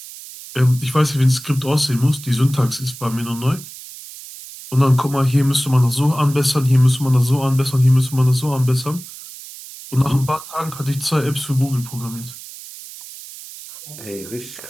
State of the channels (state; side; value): noise; right; hiss, 15 dB below the sound